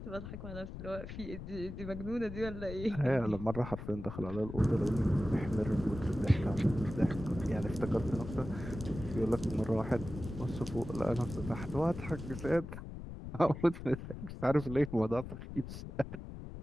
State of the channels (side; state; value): left; noise; rumble, 10 dB below the sound